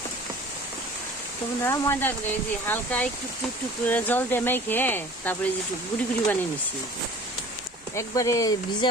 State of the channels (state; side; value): normal; both; correlation 0.45